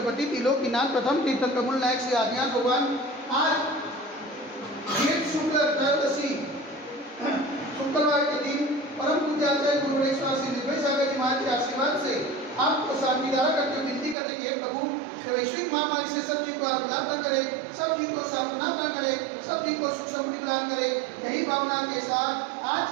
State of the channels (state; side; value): drops out; left; at 14.2 s